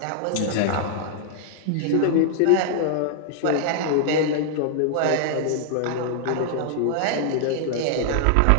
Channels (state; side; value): different; both; correlation -0.01